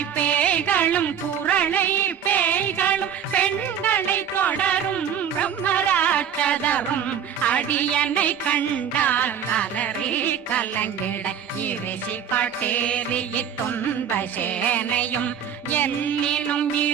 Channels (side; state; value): left; quieter; 8.3 dB